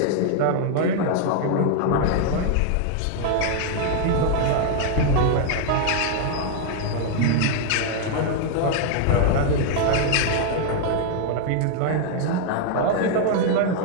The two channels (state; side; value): different; both; correlation 0.00